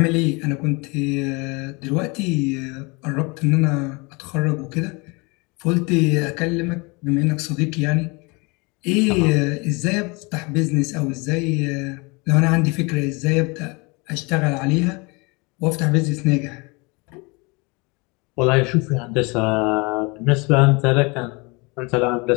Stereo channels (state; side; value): quieter; right; 28.0 dB